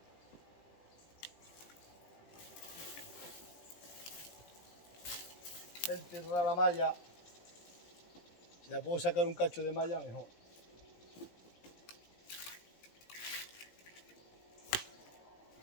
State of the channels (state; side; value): late; right; 17 ms